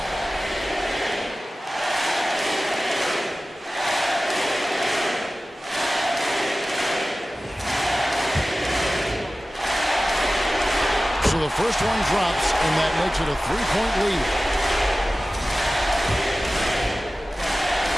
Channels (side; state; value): both; normal; correlation 0.96